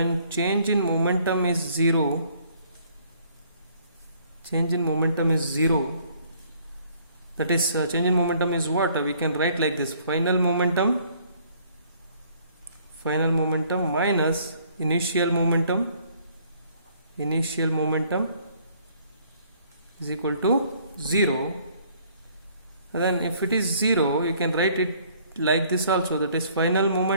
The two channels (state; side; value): inverted; both; correlation -0.61